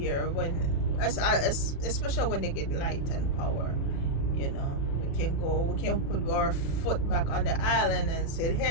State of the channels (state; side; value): late; right; 36 ms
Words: when especially when they get light and power. We can put our foot back on the island and say,